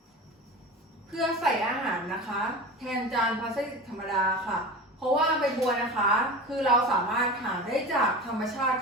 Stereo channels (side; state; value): both; normal; correlation 0.31